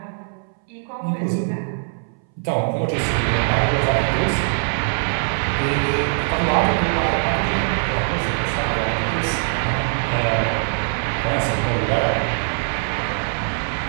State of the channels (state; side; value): silent; left; 63 dB below the other